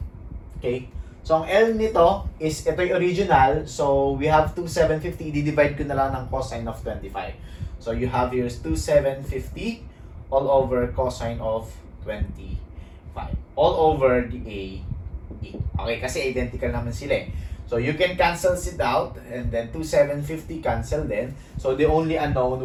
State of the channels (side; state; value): both; identical; correlation 1.00